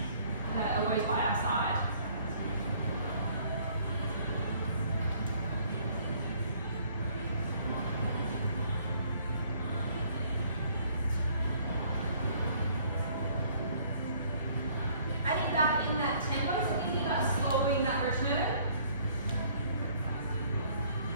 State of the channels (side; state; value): both; inverted; correlation -0.60